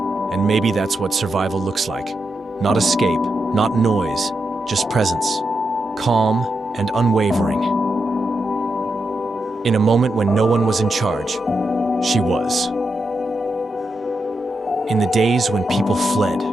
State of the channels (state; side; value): normal; both; correlation 0.86